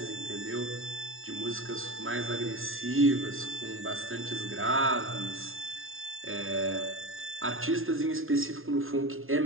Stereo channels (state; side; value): late; left; 0.60 ms